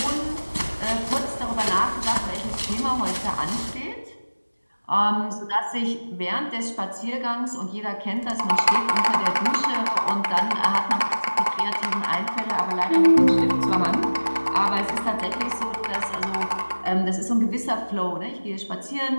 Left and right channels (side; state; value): both; inverted; correlation -1.00